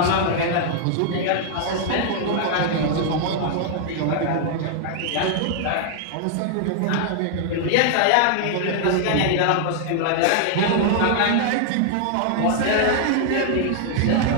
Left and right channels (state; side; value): different; both; correlation 0.00